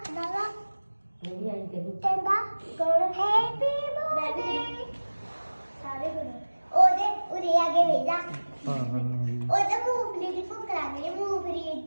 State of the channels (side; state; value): both; inverted; correlation -1.00